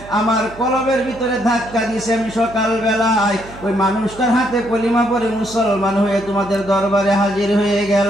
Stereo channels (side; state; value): right; noise; hum, 18 dB below the sound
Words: আমার কলবের ভিতরে ধাক্কা দিয়েছে, আমি সকাল বেলায় ওই মানুষটার হাতে কলিমা পড়ে মুসলমান হয়ে তোমাদের দরবারে হাজির হয়ে